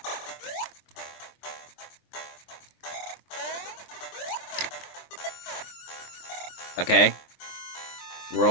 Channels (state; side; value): late; right; 23 ms